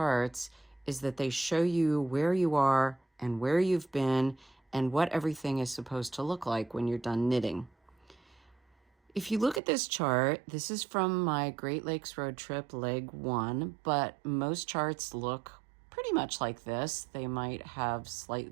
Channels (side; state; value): left; drops out; at 9.6 s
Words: is that they show you where you are and where you've been and what everything is supposed to look like when you're done knitting. If you look at this chart, this is from my Great Lakes road trip, leg 1, but most charts look pretty much like this. They might have